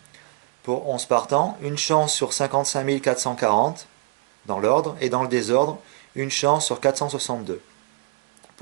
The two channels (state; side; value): quieter; left; 26.9 dB